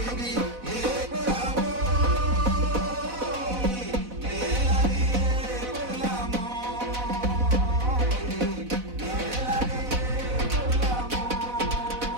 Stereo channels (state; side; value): late; left; 4.0 ms